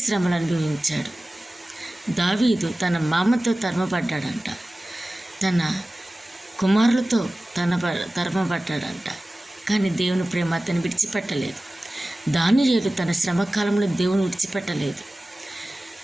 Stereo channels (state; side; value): normal; both; correlation 0.97